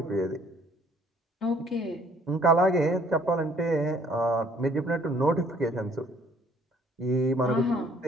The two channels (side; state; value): both; normal; correlation 0.60